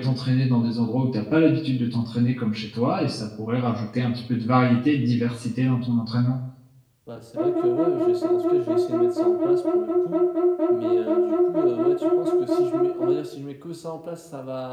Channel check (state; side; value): identical; both; correlation 1.00